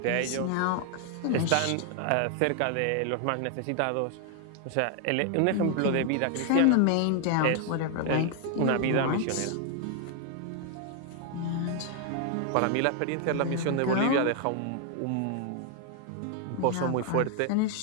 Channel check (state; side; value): different; both; correlation 0.00